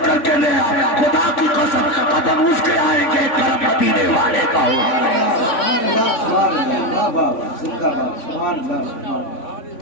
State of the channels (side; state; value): right; late; 3.5 ms